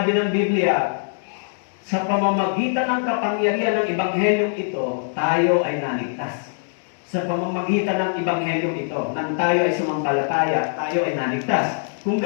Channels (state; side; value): silent; right; digital silence